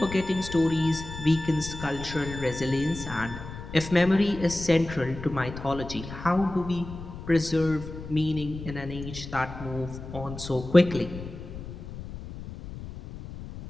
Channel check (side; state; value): left; noise; rumble, 11 dB below the sound